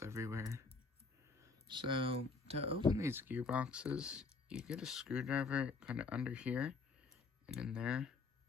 everywhere. So to open these gearboxes, you get a screwdriver kind of under here and in there,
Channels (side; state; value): right; quieter; 4.3 dB